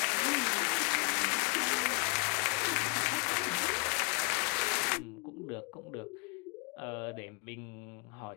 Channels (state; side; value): quieter; right; 34.3 dB